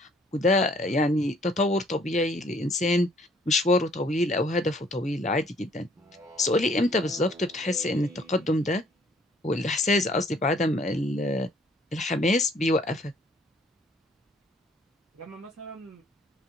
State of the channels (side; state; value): both; normal; correlation 0.61